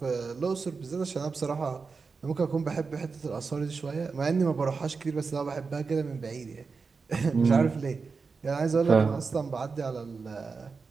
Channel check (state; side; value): quieter; left; 4.8 dB